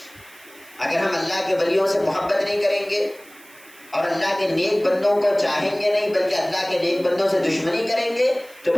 اگر ہم اللہ کے ولیوں سے محبت نہیں کریں گے اور اللہ کے نیک بندوں کو چاہیں گے نہیں بلکہ اللہ کے نیک بندوں سے دشمنی کریں گے تو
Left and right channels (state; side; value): noise; right; hiss, 24 dB below the sound